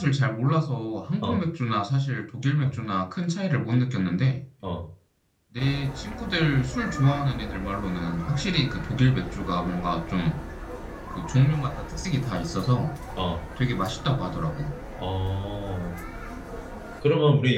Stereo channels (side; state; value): both; identical; correlation 1.00